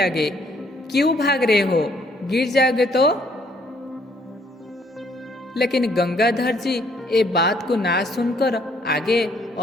क्यों भाग रहे हो, गिर जाओगे तो। लेकिन गंगाधर जी ये बात को ना सुनकर आगे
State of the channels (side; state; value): both; normal; correlation 0.66